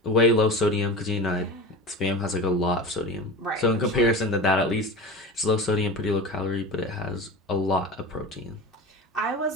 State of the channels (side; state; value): both; normal; correlation 0.30